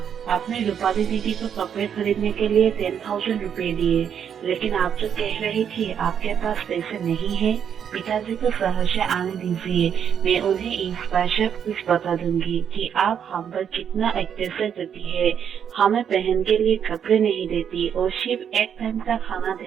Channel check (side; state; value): left; quieter; 8.2 dB